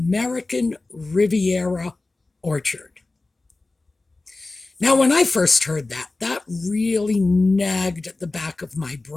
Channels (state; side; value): quieter; right; 3.3 dB